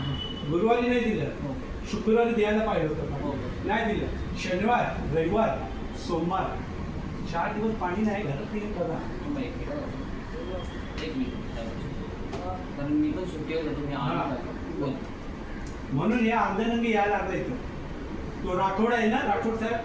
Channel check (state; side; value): identical; both; correlation 1.00